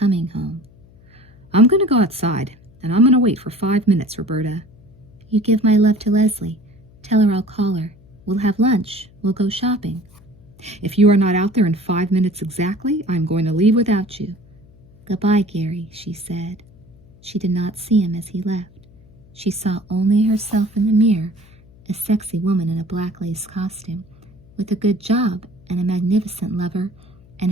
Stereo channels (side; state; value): left; noise; hum, 26 dB below the sound